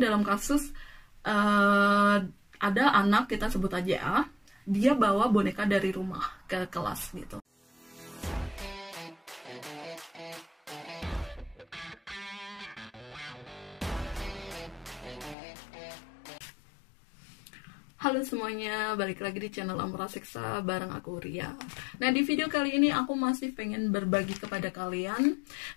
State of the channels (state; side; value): drops out; right; at 15.4 s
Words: dalam kasus ada anak, kita sebut aja A, dia bawa boneka dari rumah ke kelas gitu. Halo semuanya, balik lagi di channel Ampera Siksa bareng aku Ria. Nah, di video kali ini aku masih pengen berbagi kepada kalian